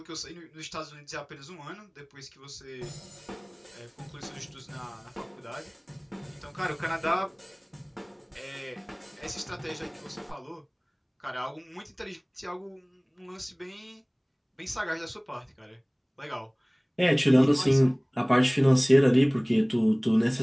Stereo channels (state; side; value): identical; both; correlation 1.00